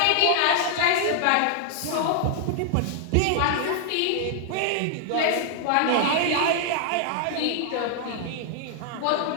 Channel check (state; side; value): different; both; correlation 0.00